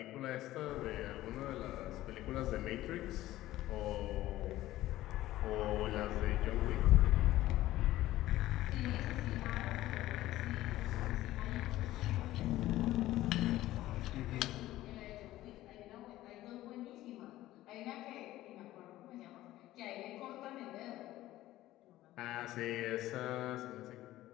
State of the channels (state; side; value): quieter; right; 15.5 dB